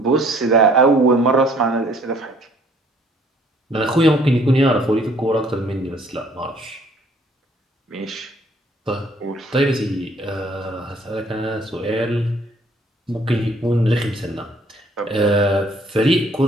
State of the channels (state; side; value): normal; both; correlation 0.59